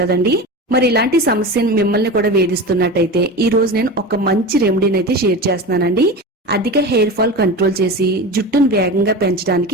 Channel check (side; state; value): both; normal; correlation 0.28